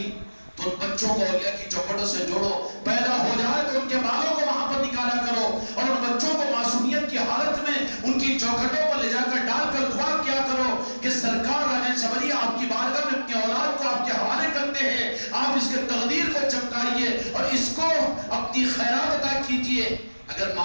تو ان بچوں کو اولیاء کی چوکھٹوں سے جوڑو، پیدا ہو جائے تو ان کے بالوں کو وہاں پر نکالا کرو، اور ان بچوں کو معصومیت کی حالت میں ان کی چوکھٹوں پر لے جا کر ڈال کر دعا کیا کرو کہ سرکار راجن شبری آپ کی بارگاہ میں اپنی اولاد کو آپ کے حوالے کرتے ہیں، آپ اس کے تقدیر کو چمکائیے اور اس کو اپنی خیرات عطا کیجئے۔ اگر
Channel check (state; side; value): inverted; both; correlation -1.00